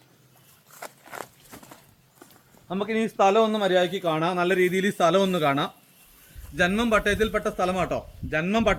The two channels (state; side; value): identical; both; correlation 1.00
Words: നമുക്കിനി ഈ സ്ഥലം ഒന്ന് മര്യാദയ്ക്ക് കാണാം. നല്ല രീതിയിൽ ഈ സ്ഥലം ഒന്ന് കാണാം. ജന്മം പട്ടയത്തിൽപ്പെട്ട